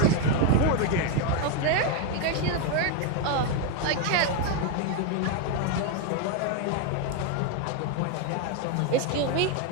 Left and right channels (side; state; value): both; different; correlation 0.01